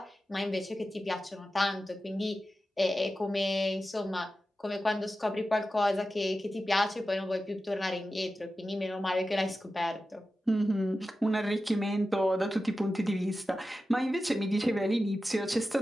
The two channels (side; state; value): both; normal; correlation 0.93